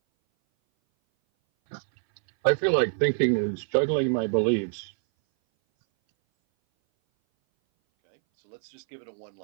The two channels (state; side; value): silent; left; 59 dB below the other